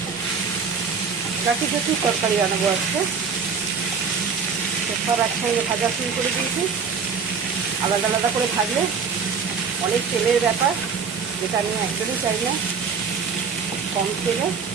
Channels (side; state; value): left; quieter; 5.8 dB